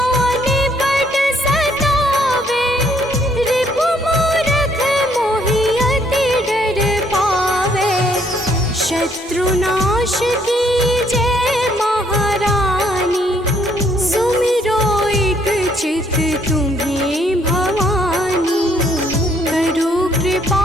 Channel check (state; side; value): normal; both; correlation 0.67